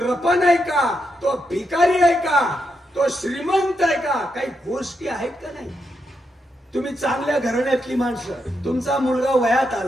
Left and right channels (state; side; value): normal; both; correlation 0.82